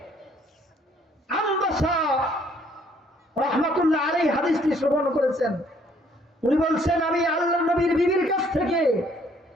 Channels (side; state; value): both; normal; correlation 0.63